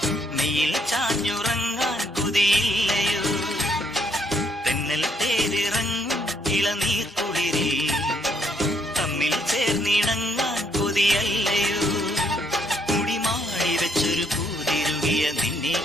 നീയിൽ ചാഞ്ഞുറങ്ങാൻ കൊതിയില്ലയോ. തെന്നൽ തേരിറങ്ങും ഇളനീർ കുളിരിൽ തമ്മിൽ ചേർന്നിണങ്ങാൻ കൊതിയല്ലയോ. മുടിമാടി വെച്ചൊരു പൂതിരുകിയ നിന്നെ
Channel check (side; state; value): both; normal; correlation 0.71